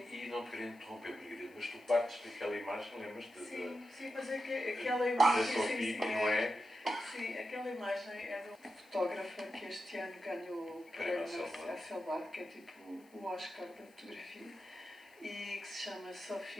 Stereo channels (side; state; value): left; noise; hiss, 29 dB below the sound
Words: não te queria interromper, Margarida, mas tu partes daquela imagem, lembras-te? Sim, mas é que aquela da imagem. Sophie, não é? Sim, aquela imagem é de uma fotógrafa que este ano ganhou o prémio Hasselblad, que é tipo o Oscar da fotografia, e que se chama